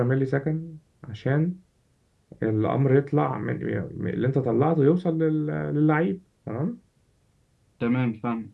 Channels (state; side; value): identical; both; correlation 1.00